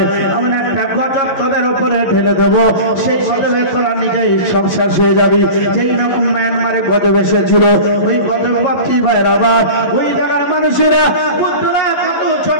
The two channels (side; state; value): right; late; 11 ms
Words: আমি একটা গজব তোদের উপরে ঢেলে দেবো, সেই গজবে তোরা নিজেই সব শেষ হয়ে যাবি। যেই রকম মায়ানমারে গজব এসেছিল ওই গজব বাপি ভাইয়ের আবার ওই জায়গার মানুষেরা বুদ্ধরা কত